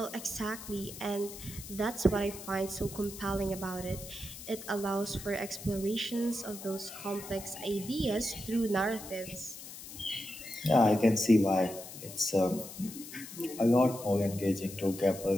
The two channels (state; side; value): noise; left; hiss, 13 dB below the sound